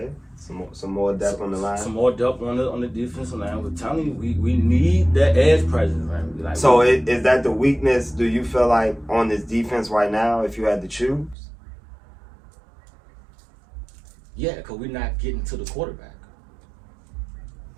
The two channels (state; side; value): drops out; left; at 11.4 s